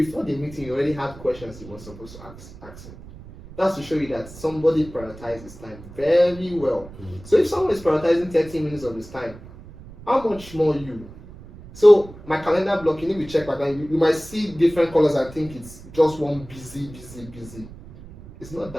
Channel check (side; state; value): right; noise; rumble, 17 dB below the sound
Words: the meeting, he already had questions he was supposed to ask him. That's to show you that somebody prioritizes time very well. So if someone is prioritizing 30 minutes of his time, how much more you? So my calendar blocking, if you check my calendar, you might see different colors and think it's just one busy. It's not